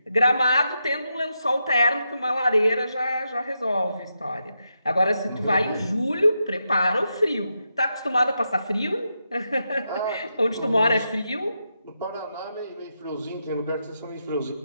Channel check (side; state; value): both; inverted; correlation -0.85